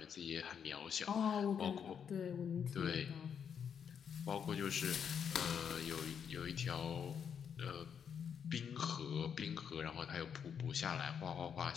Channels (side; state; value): right; quieter; 7.5 dB